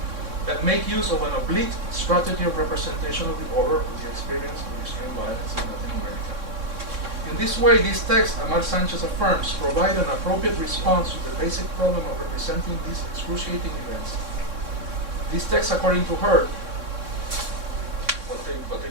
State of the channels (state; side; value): late; left; 3.6 ms